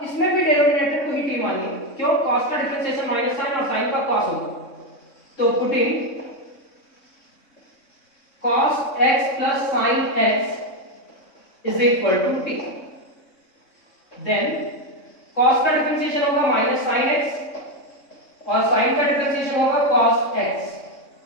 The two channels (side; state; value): right; late; 3.6 ms